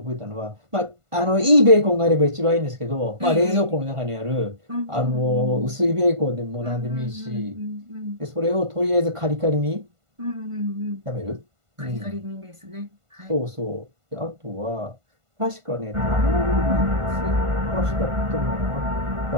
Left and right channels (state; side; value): late; left; 1.5 ms